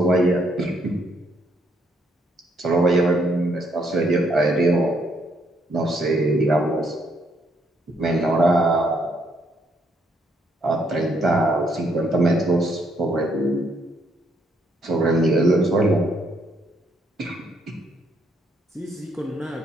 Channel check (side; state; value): both; normal; correlation 0.72